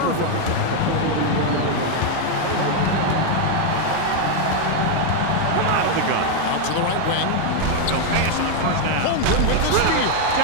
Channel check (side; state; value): both; different; correlation 0.01